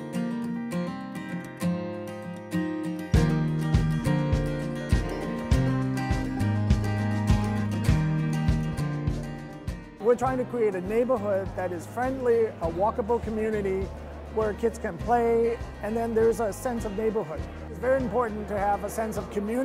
We're trying to create a neighborhood that is friendly, a walkable community where kids can play, and then there's a sense of neighborhood. It's very important to have a sense of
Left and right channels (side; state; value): both; identical; correlation 1.00